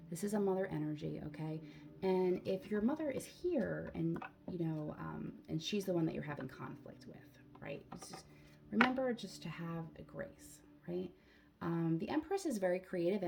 This is a mother energy, okay? And if your mother is here and, and she's the one that you're having conflict with, right? Remember just to have a grace, right? The Empress is very creative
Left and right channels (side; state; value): both; identical; correlation 1.00